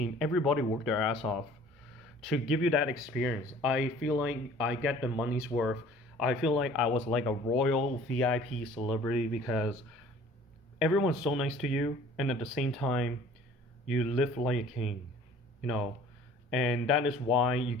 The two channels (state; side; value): normal; both; correlation 0.50